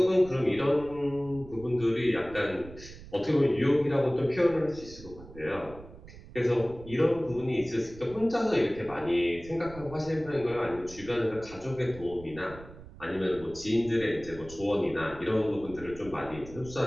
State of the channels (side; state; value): right; noise; rumble, 17 dB below the sound